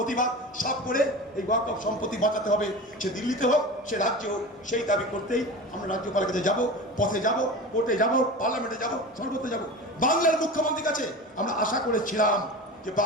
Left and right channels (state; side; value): normal; both; correlation 0.31